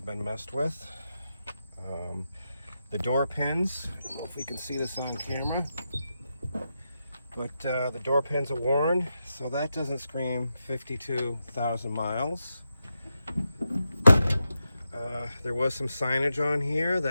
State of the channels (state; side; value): inverted; both; correlation -0.87